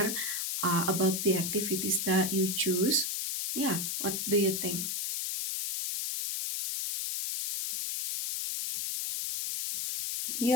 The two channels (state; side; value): noise; left; hiss, 1 dB below the sound